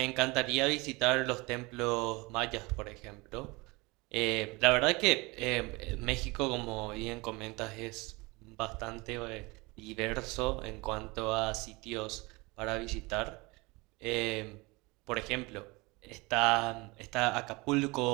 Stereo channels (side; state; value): left; quieter; 24.9 dB